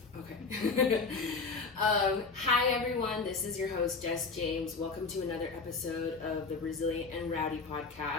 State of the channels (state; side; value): quieter; right; 4.3 dB